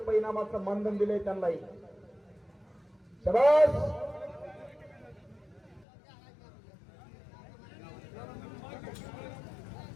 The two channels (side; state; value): right; drops out; at 5.9 s